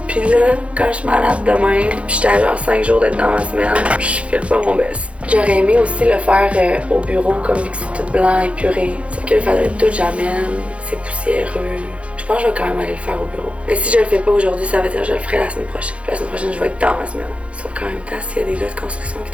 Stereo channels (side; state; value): left; late; 0.062 ms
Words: Puis là, quand je suis malade demain, puis j'étais à genre 5 jours d'être dans ma semaine, je file pas mon best. J'aurais aimé aussi le faire au bureau, comme vu que c'est tout blanc, épuré. Sauf que il faudrait tout que j'amène, c'est poussiéreux. Je pense que je vais quand même aller le faire au bureau. Mais si je le fais pas aujourd'hui, ça veut dire que je le ferai la semaine prochaine. Puis la semaine prochaine, je vais être dans ma semaine. Sauf qu'en même temps, s'il y a des gars de construction qui